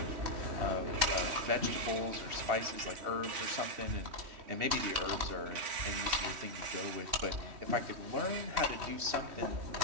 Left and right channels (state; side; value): late; left; 3.1 ms